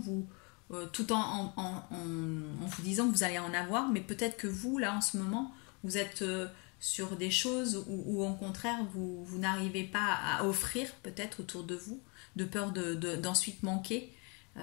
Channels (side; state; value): right; quieter; 32.4 dB